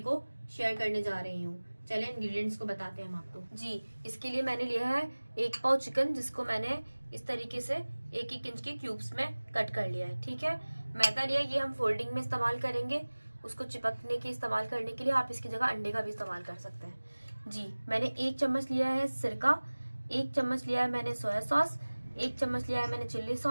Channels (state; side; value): inverted; both; correlation -1.00